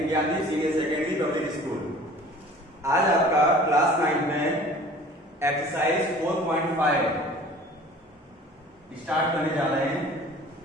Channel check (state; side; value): normal; both; correlation 0.46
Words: Gyandeep senior secondary public school. आज आपका class 9 में exercise 4.5 start करने जा रहे हैं।